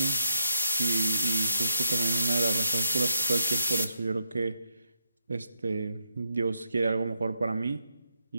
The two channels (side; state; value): both; inverted; correlation -0.80